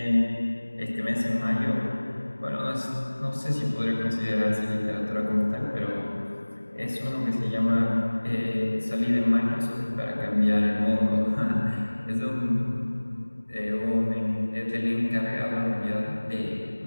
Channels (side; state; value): both; inverted; correlation -1.00